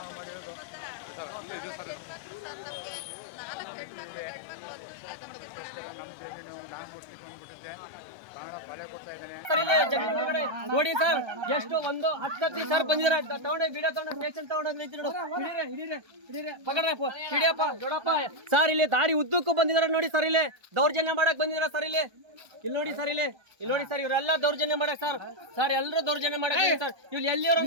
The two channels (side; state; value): left; late; 1.3 ms